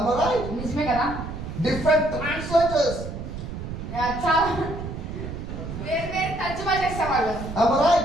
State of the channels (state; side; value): noise; right; rumble, 8 dB below the sound